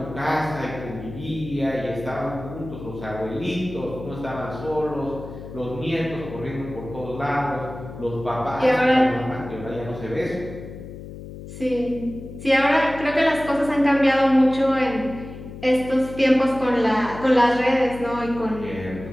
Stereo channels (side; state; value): left; noise; hum, 12 dB below the sound